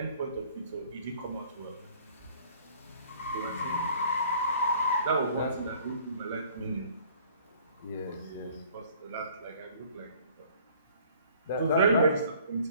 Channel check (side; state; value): both; inverted; correlation -0.55